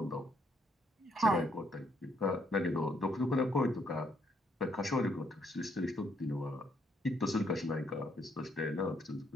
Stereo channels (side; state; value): both; normal; correlation 0.72